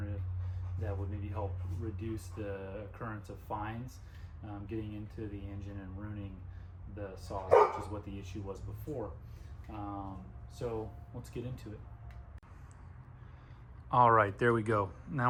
that would maybe help reduce the occurrence of fines getting into the engine and ruining the saws, which is what the issue was before. So let's get into it. All right, there we go.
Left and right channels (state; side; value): identical; both; correlation 1.00